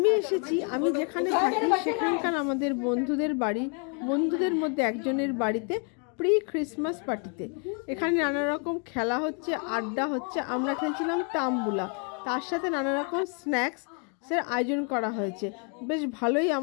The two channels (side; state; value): right; quieter; 39.5 dB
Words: এসেছি, আমি যেখানে থাকি সেখানকার আমাদের বন্ধুদের বাড়ি, বন্ধুদের মধ্যে একজনের বাড়িতে প্রি ক্রিসমাস পার্টিতে। এখানে নানা রকম খেলা হচ্ছে, আড্ডা হচ্ছে। আমরা খেলছিলাম তাম্বুলা, তার সাথে নানা রকম স্ন্যাক্সের আয়োজন করা হয়েছে। বেশ ভালোই